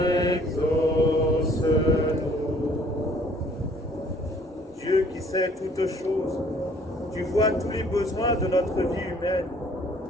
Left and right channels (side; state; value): both; normal; correlation 0.58